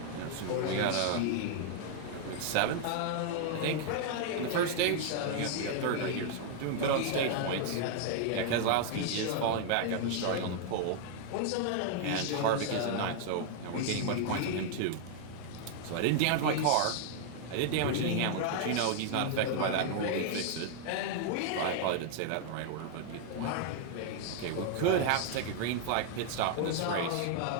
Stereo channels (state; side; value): different; both; correlation 0.00